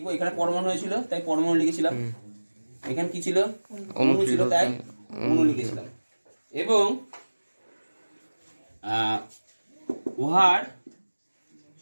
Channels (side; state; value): both; inverted; correlation -1.00